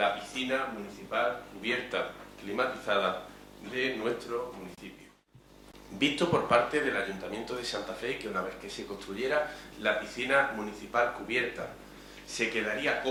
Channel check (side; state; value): both; identical; correlation 1.00